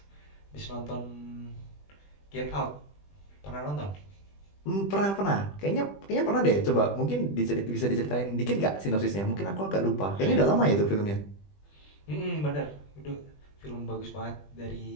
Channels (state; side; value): late; right; 20 ms